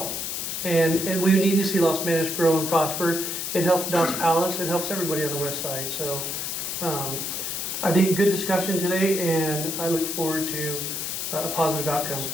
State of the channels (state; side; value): noise; left; hiss, 3 dB below the sound